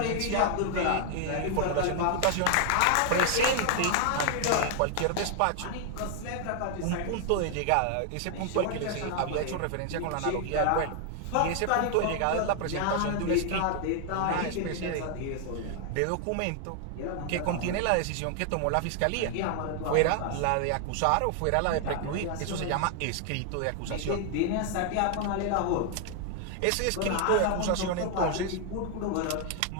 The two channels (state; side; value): different; both; correlation 0.00